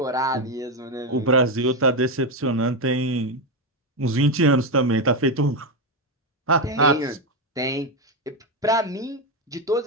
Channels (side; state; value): both; normal; correlation 0.08